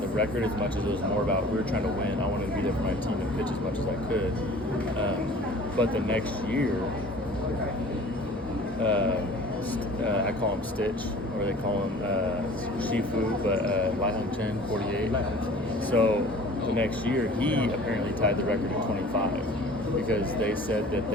the record as much as it was more about we were trying to win. I wanted to be there for my team and pitch as much as I could. But the next year, I call him Stitch, or they call him Shifu, but Lai Hong Chen, 48. So the next year, he apparently tied the record at 25 because they said that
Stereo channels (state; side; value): normal; both; correlation 0.46